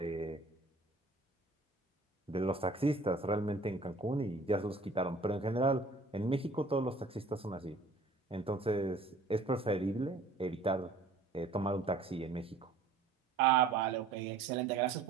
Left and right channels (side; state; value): left; quieter; 3.5 dB